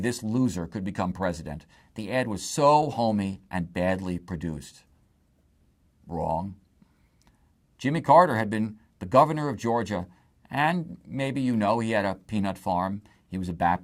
loser could become president. The ad was so homey and badly produced. Wrong. Jimmy Carter had been the governor of Georgia, and maybe you know he had a peanut farm. He was a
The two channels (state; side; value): identical; both; correlation 1.00